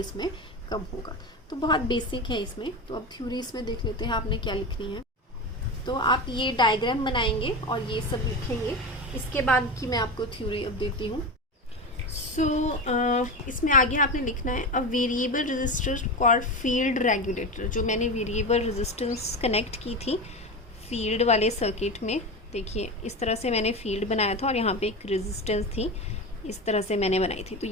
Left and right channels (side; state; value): both; normal; correlation 0.22